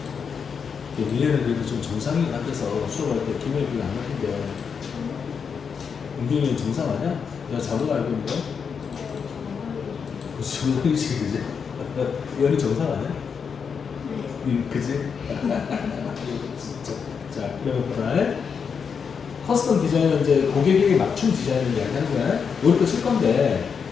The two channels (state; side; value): quieter; right; 6.3 dB